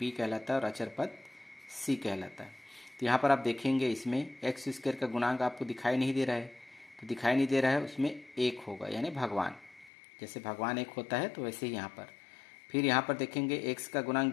कहलाता है और अचर पद सी कहलाता है। तो यहाँ पर आप देखेंगे इसमें एक्स स्क्वायर का गुणांक आपको दिखाई नहीं दे रहा है, तो दिखाई नहीं दे रहा है, उसमें एक होगा, यानी भगवान, जैसे भगवान एक होता है तो वैसे ही यहाँ पर। फिर यहाँ पर देखेंगे एक्स का गुणांक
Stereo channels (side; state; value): right; drops out; at 9.9 s